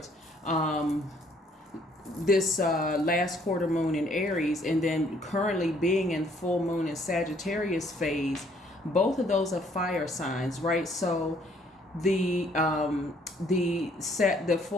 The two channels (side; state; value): both; normal; correlation 0.64